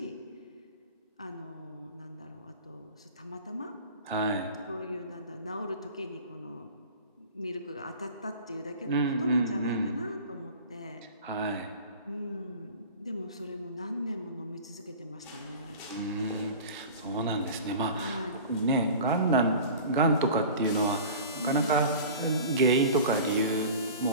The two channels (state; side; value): inverted; both; correlation -0.38